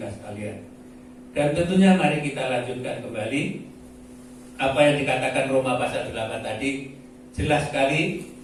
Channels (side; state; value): both; identical; correlation 1.00